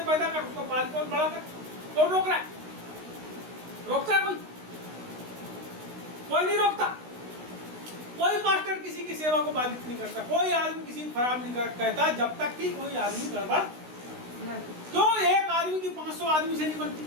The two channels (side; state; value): left; late; 16 ms